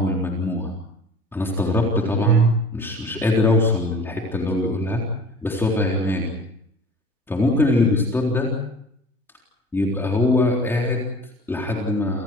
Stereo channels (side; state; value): both; normal; correlation 0.43